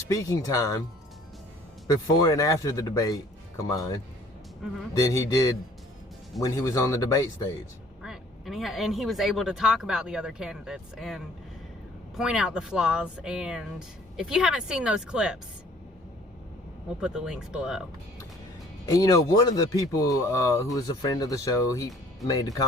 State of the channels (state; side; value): normal; both; correlation 0.56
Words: time before and after the debate combined than he did when he was on the debate stage. Right. And he was able to talk about the other candidates and point out the flaws. And if you haven't seen those clips, we'll put the links below. And you know, one of the people who was a friend of the show, he made a